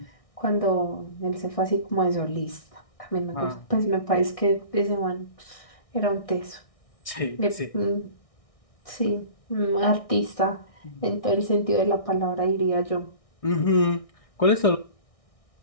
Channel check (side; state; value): right; late; 1.6 ms